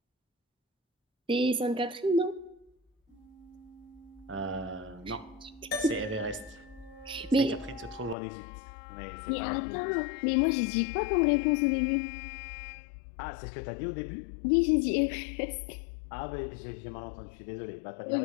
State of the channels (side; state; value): right; drops out; at 8.2 s